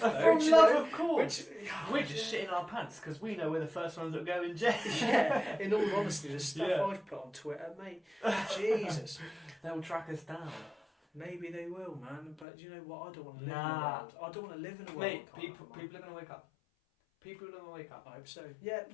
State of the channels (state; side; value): drops out; right; at 12.5 s